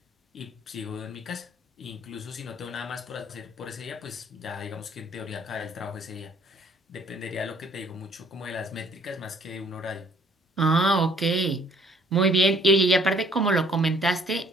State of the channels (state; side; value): normal; both; correlation 0.60